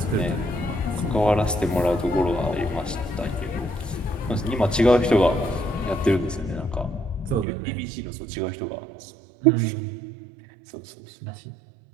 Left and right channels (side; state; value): left; drops out; at 7.5 s